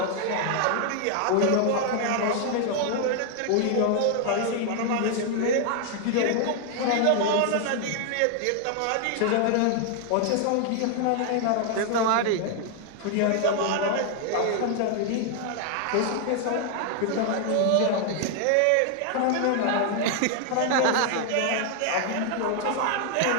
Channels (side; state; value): both; different; correlation 0.00